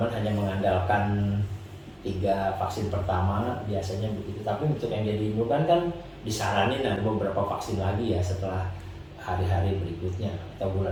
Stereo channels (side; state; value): both; identical; correlation 1.00